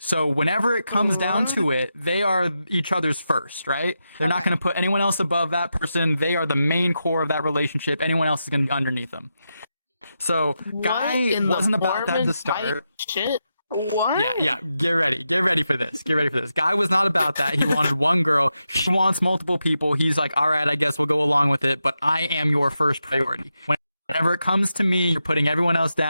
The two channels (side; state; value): both; inverted; correlation -0.87